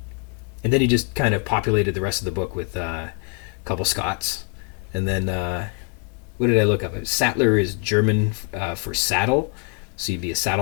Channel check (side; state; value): right; quieter; 34.4 dB